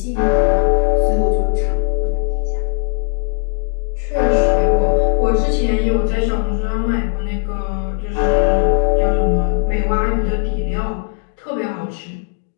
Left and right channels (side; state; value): right; quieter; 39.0 dB